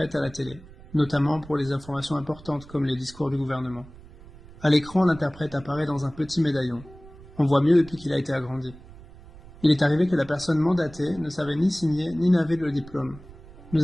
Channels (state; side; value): noise; right; rumble, 20 dB below the sound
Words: à la télé, notamment pour les informations importantes comme les discours du gouvernement. À l'écran, l'interprète apparaît dans un petit médaillon. On voit mieux depuis qu'il a été agrandi. Il est arrivé que la personne mandatée ne savait ni signer ni n'avait le diplôme. Nous